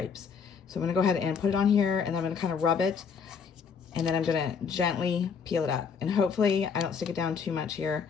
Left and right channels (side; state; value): right; quieter; 6.2 dB